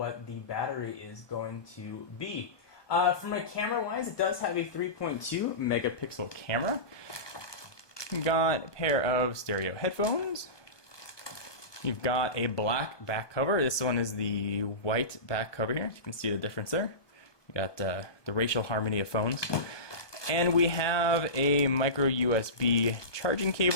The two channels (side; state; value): right; late; 1.2 ms